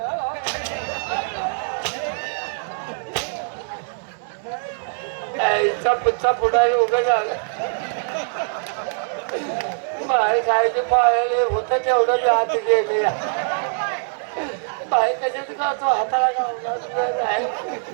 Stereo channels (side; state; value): left; silent; 64 dB below the other